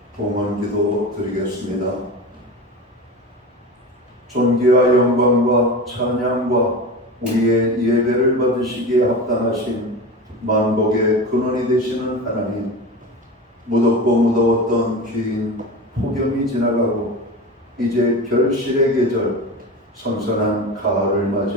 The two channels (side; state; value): both; normal; correlation 0.28